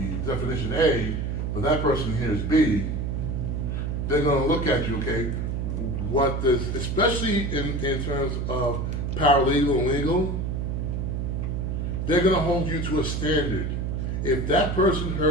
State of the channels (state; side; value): noise; right; hum, 1 dB below the sound